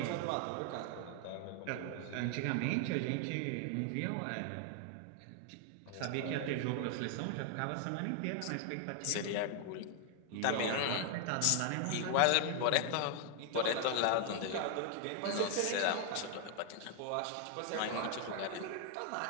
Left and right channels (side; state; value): both; different; correlation 0.00